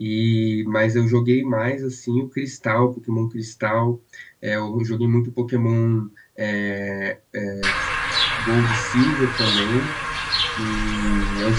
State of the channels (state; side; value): identical; both; correlation 1.00